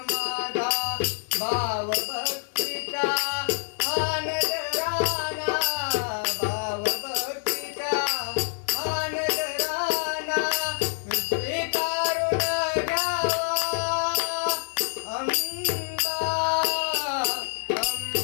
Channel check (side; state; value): right; silent; digital silence